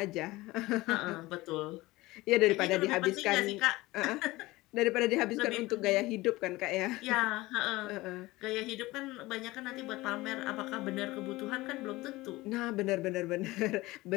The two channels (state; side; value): quieter; right; 19.8 dB